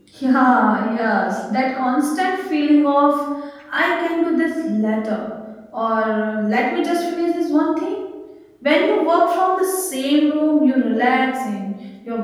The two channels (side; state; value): both; identical; correlation 1.00